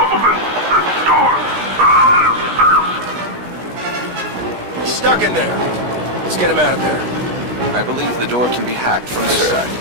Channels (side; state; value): left; late; 17 ms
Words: He's stuck in there. Let's get him out of there. I believe the door can be hacked from this side.